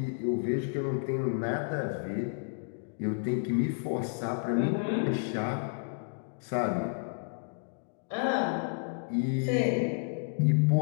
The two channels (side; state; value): right; silent; digital silence